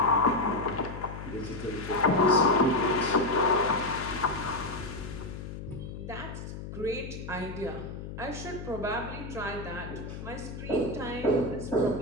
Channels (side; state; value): left; noise; hum, 9 dB below the sound